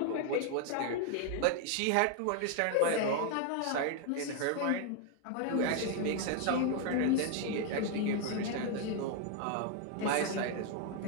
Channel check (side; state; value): both; different; correlation 0.01